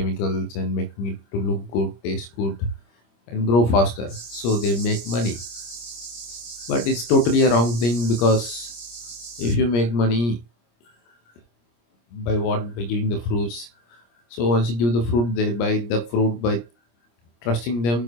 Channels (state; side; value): late; right; 25 ms